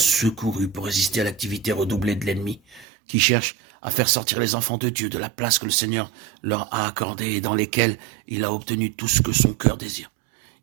pour résister à l'activité redoublée de l'ennemi, qui cherche à faire sortir les enfants de Dieu de la place que le Seigneur leur a accordée et dans lesquelles il a obtenu tout ce que son cœur désire.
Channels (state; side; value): drops out; left; at 2.9 s